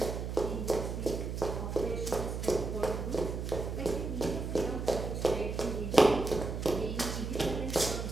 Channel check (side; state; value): right; noise; hum, 4 dB below the sound